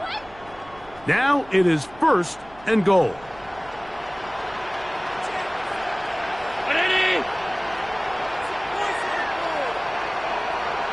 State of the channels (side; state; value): right; noise; hum, 23 dB below the sound